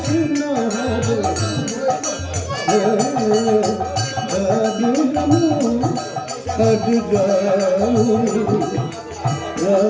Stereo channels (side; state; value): both; identical; correlation 1.00